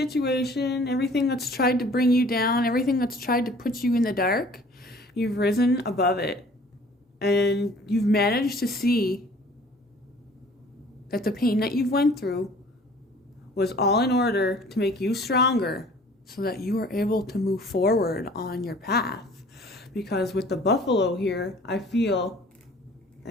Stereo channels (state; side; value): normal; both; correlation 0.51